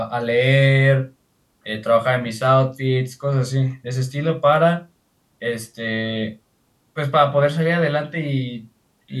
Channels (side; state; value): both; identical; correlation 1.00